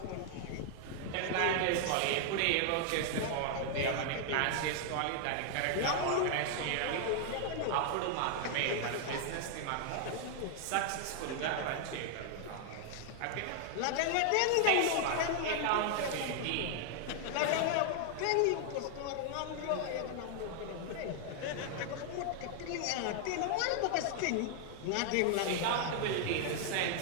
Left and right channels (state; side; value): different; both; correlation 0.00